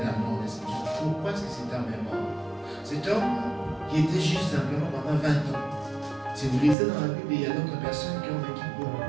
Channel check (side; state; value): left; drops out; at 6.8 s